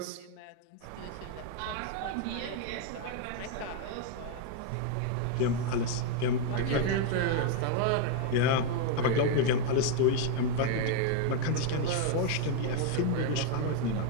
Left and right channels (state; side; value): different; both; correlation 0.00